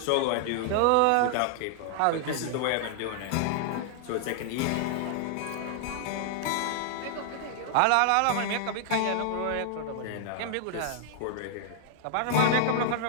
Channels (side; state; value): both; different; correlation -0.01